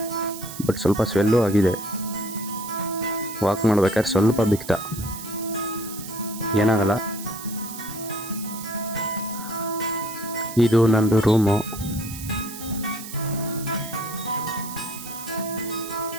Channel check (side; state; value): right; noise; hiss, 12 dB below the sound